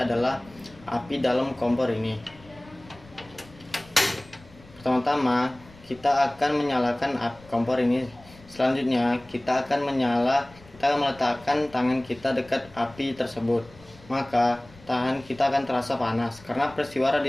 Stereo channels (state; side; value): noise; left; rumble, 24 dB below the sound